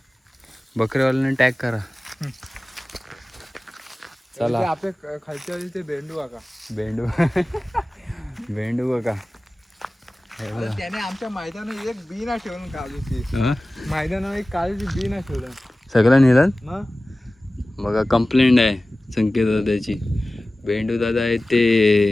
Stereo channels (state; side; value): normal; both; correlation 0.97